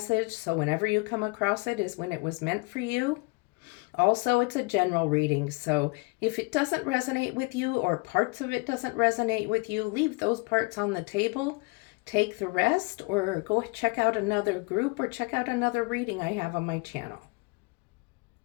so whenever you come across it is when it was meant for you. Also, it's a general reading, so if it doesn't resonate with you or parts of it doesn't resonate with you, leave those parts on the table. Take the rest or go check out another group or check out another reading I have on my channel.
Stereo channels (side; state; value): right; quieter; 28.3 dB